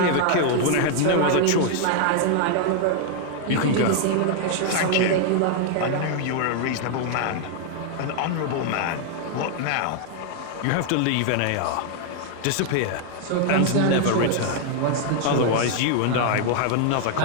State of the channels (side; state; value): both; different; correlation 0.00